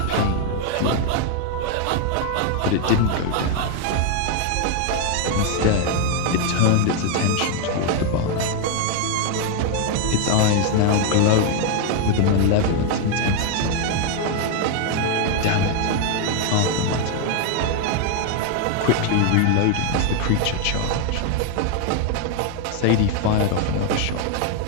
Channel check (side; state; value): both; different; correlation 0.01